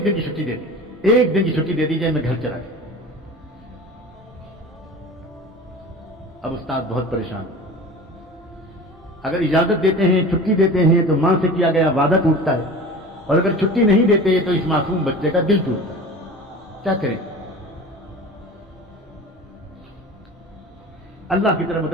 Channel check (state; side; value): normal; both; correlation 0.37